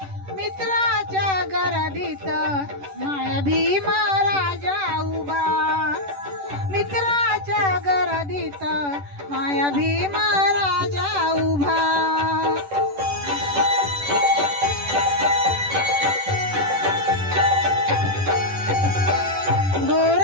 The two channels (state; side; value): late; left; 10 ms